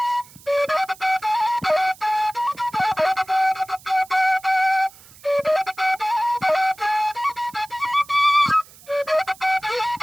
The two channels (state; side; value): noise; right; hiss, 23 dB below the sound